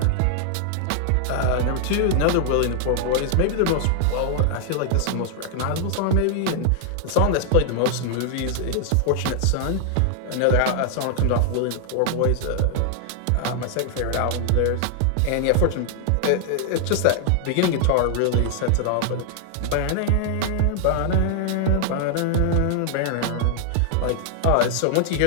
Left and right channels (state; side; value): different; both; correlation 0.00